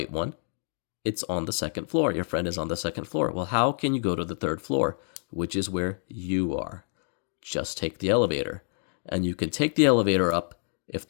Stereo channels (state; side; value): silent; right; digital silence